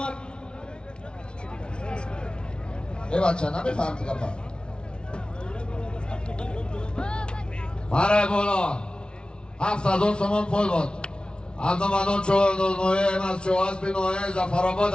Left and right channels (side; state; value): right; late; 0.056 ms